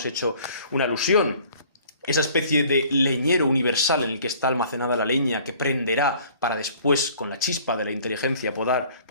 hecho una alusión, esa especie de leñero universal en el que está almacenada la leña que prenderá para después, con la chispa de la inteligencia,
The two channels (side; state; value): both; inverted; correlation -0.53